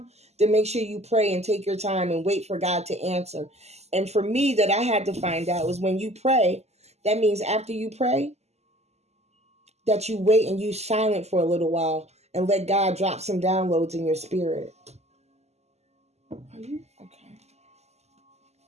then make sure you pray and take your time and wait for God to answer. And for me, that I had to find out was when you pray, that means after you pray, that you wait and you silent for a little while and let God drop some downloads in your spirit. Are you okay?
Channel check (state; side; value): late; left; 0.32 ms